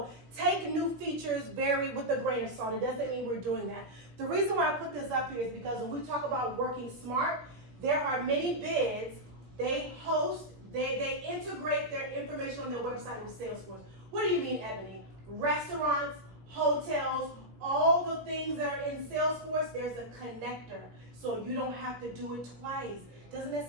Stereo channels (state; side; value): late; left; 17 ms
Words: take new features with a grain of salt. It doesn't mean we're doing that. The reason why I put this up here is because when we talk about working smart, there are many bids, they integrate their information on their website with Salesforce. What do you mean, Ebony? Restaurants, hotels, all the things that are in Salesforce, there's a connector. So you don't have to do it twice. Doesn't that